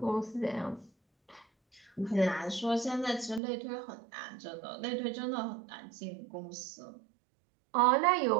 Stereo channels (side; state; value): left; drops out; at 3.4 s